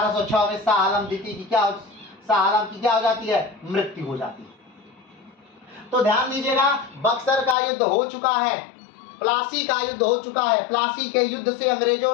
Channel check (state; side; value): drops out; right; at 7.6 s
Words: में शाह आलम द्वितीय की क्या हो जाती है? मृत्यु हो जाती है। तो ध्यान दीजिएगा, बक्सर का युद्ध हो चुका है, प्लासी का युद्ध हो चुका है। प्लासी के युद्ध से अंग्रेजों